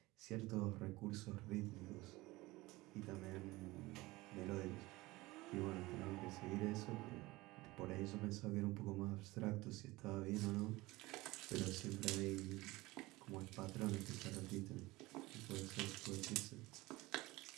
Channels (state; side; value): quieter; left; 20.4 dB